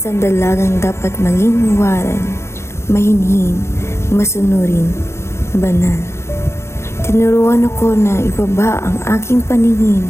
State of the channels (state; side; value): late; right; 0.13 ms